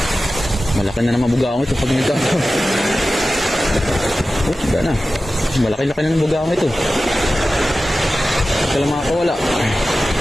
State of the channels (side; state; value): both; normal; correlation 0.94